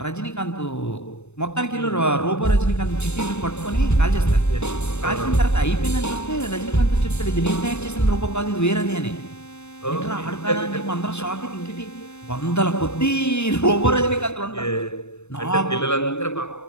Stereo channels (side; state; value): right; late; 0.81 ms